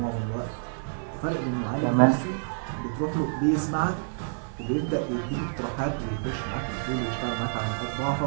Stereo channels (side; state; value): left; silent; 59 dB below the other